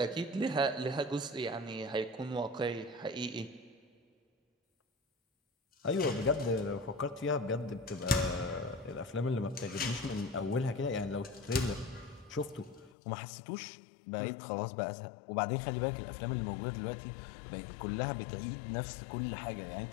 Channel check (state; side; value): drops out; right; at 12.9 s